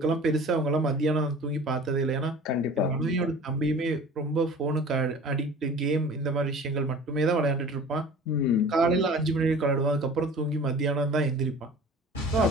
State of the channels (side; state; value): both; normal; correlation 0.42